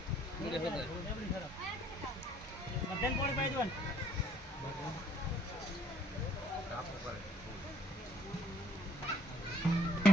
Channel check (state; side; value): normal; both; correlation 0.62